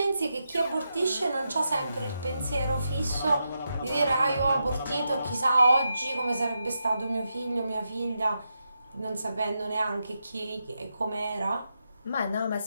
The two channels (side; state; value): both; inverted; correlation -0.86